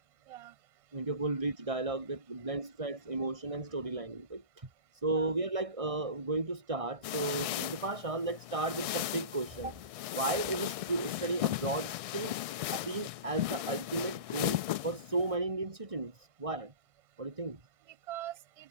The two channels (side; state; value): left; late; 1.6 ms